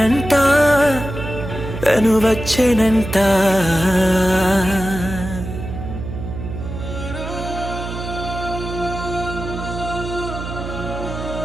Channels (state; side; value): noise; right; hum, 8 dB below the sound